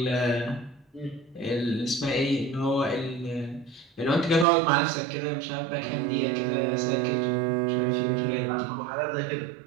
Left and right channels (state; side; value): drops out; left; at 4.5 s